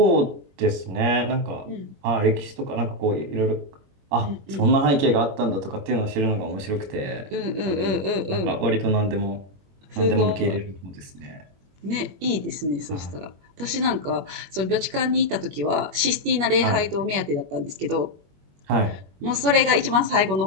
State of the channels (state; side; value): late; left; 21 ms